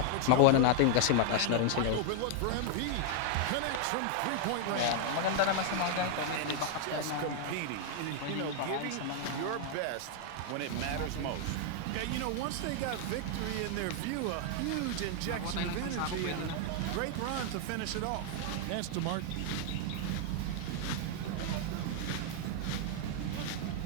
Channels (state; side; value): different; both; correlation 0.00